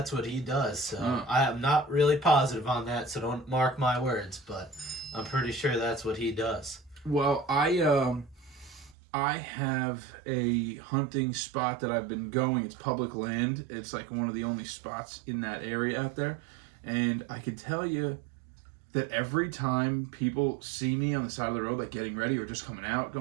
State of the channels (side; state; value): left; drops out; at 9.0 s